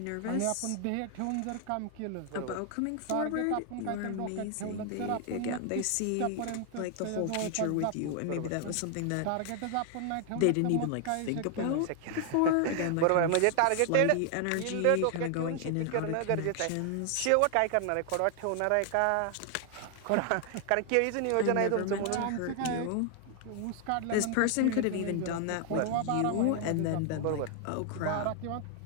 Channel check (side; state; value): both; different; correlation 0.00